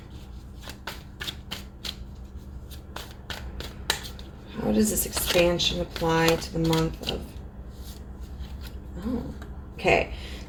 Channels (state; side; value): identical; both; correlation 1.00